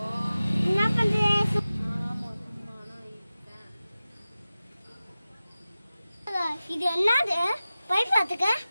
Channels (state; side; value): inverted; both; correlation -0.96